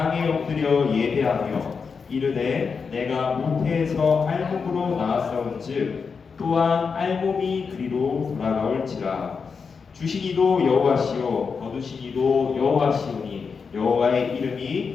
엎드려 예배하며 이르되 내가 모태에서 알몸으로 나았사온즉 또한 알몸이 그리로 돌아가올지라. 주시니도 여호와시요 거두시니도 여호와시오니 여호와의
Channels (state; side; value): quieter; right; 5.5 dB